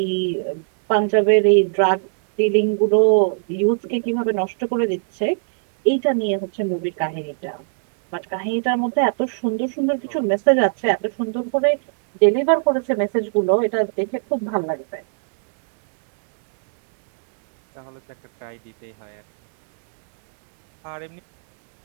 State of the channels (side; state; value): left; silent; digital silence